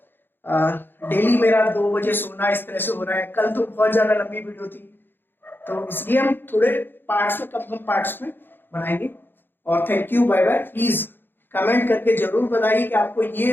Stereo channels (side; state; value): right; late; 0.098 ms